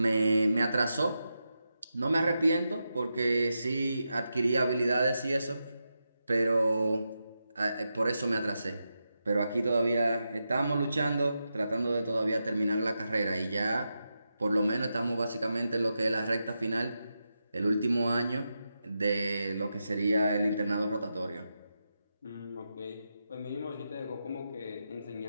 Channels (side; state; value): both; inverted; correlation -0.88